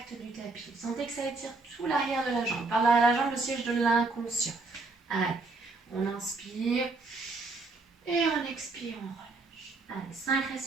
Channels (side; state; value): left; quieter; 3.6 dB